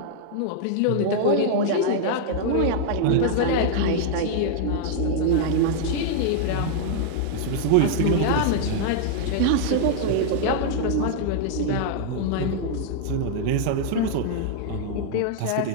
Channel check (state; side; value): different; both; correlation 0.00